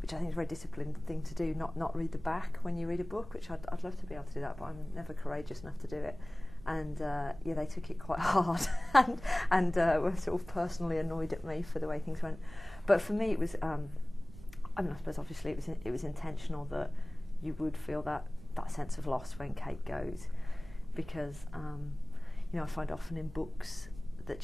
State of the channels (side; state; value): right; noise; rumble, 17 dB below the sound